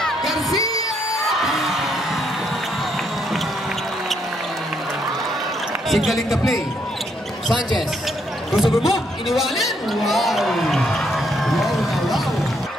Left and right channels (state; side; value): normal; both; correlation 0.73